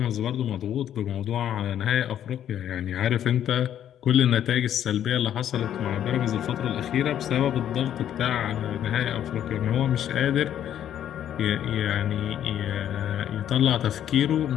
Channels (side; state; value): right; quieter; 10.5 dB